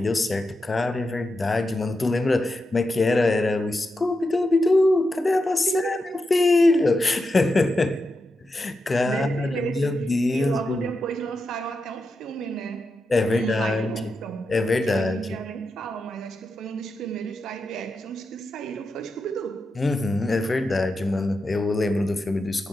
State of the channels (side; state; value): both; normal; correlation 0.88